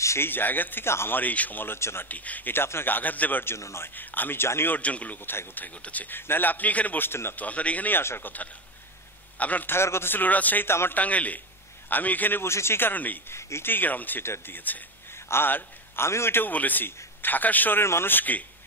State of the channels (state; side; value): normal; both; correlation 0.16